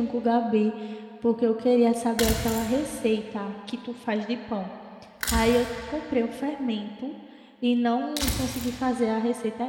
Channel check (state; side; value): identical; both; correlation 1.00